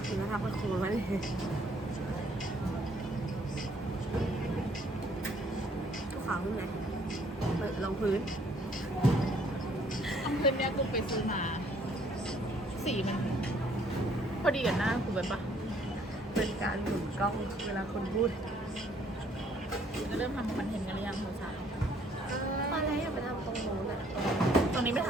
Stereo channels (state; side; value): normal; both; correlation 0.63